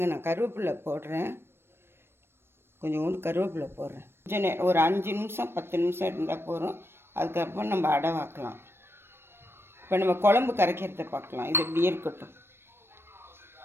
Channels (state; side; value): late; left; 0.12 ms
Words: நான் கருவேப்பிலை போடுறேன். கொஞ்சோண்டு கருவேப்பிலை போடுறேன். கொஞ்சம் ஒரு 5 நிமிஷம் 10 நிமிஷம் இருந்தால் போதும். அதுக்கப்புறம் நம்ம அடை வாக்கலாம். இப்போ நம்ம குழம்பு கரைக்கிறத பார்க்கலாம். இது இப்படியே இருக்கட்டும்.